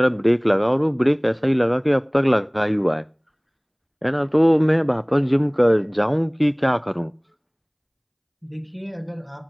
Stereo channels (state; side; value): identical; both; correlation 1.00